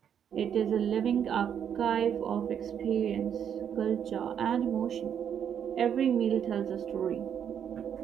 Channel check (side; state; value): left; quieter; 8.5 dB